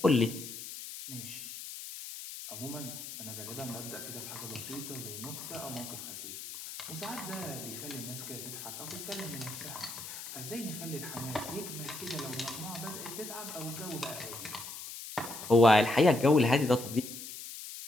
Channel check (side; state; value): left; noise; hiss, 10 dB below the sound